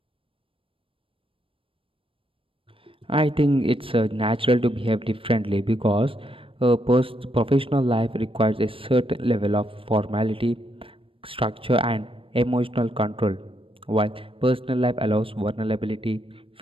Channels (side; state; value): left; late; 0.26 ms